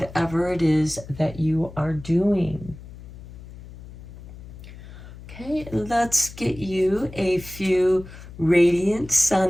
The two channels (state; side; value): noise; left; hum, 16 dB below the sound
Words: it is that you are doing. Okay, let's get you a few Radiant